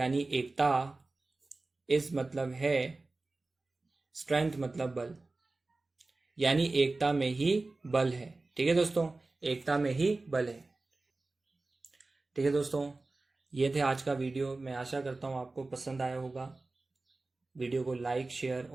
एकता, इज मतलब है, स्ट्रेंथ मतलब बल, यानी एकता में ही बल है, ठीक है दोस्तों, एकता में ही बल है, ठीक है दोस्तों। ये थे आज का वीडियो, मैं आशा करता हूँ आपको पसंद आया होगा। वीडियो को लाइक, शेयर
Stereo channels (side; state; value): left; quieter; 3.3 dB